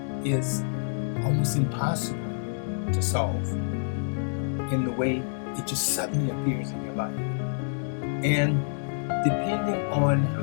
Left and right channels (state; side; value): silent; right; digital silence